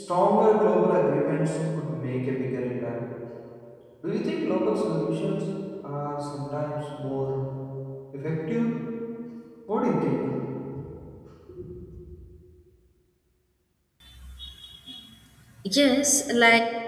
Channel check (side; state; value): both; identical; correlation 1.00